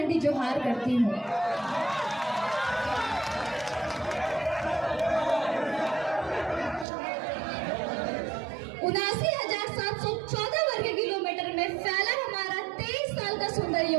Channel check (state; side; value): drops out; left; at 6.9 s